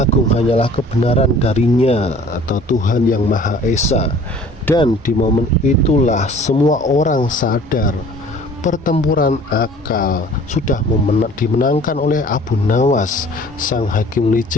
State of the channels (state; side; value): normal; both; correlation 0.49